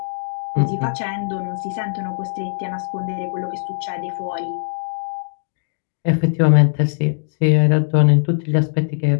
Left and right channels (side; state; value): right; silent; 63 dB below the other